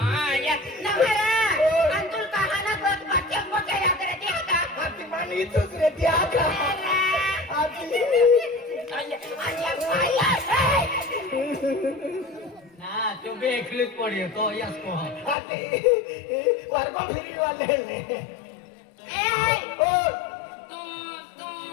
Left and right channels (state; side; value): drops out; right; at 15.4 s